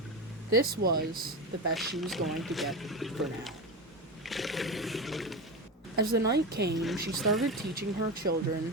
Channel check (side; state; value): both; normal; correlation 0.21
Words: This was the best she was going to get for now. As the night came, she started teaching her